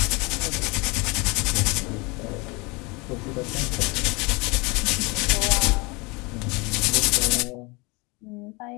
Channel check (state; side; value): quieter; right; 27.2 dB